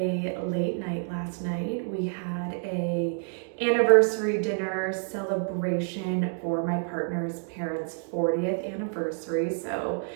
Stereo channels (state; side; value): silent; left; 59 dB below the other